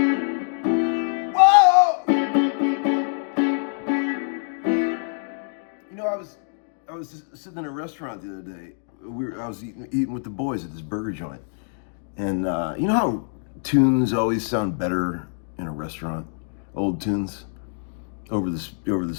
Whoa! You know, I was just sitting in a restaurant the other day. I was eating with the boys at this burger joint, and you know how tunes always sound better in a restaurant, old tunes over the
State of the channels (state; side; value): silent; right; digital silence